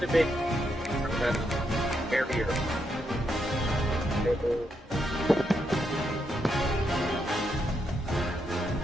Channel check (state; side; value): normal; both; correlation 0.80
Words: a big barrier.